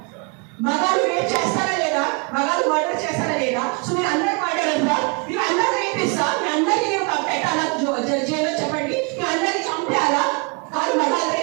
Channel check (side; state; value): left; quieter; 33.1 dB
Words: మగాళ్ళు రేప్ చేస్తారా లేదా? మగాళ్ళు మర్డర్ చేస్తారా లేదా? సో మీరు